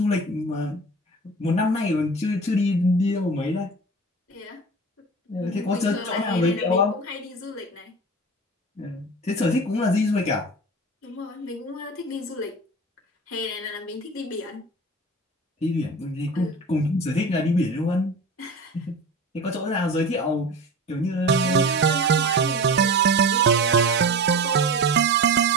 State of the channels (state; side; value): normal; both; correlation 0.33